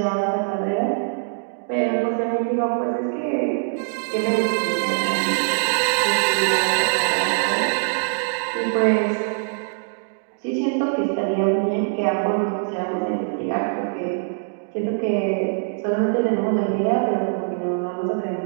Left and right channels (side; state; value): left; silent; digital silence